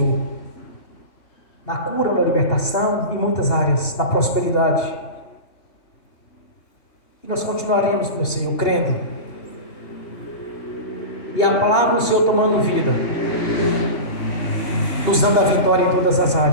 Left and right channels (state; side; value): late; right; 2.8 ms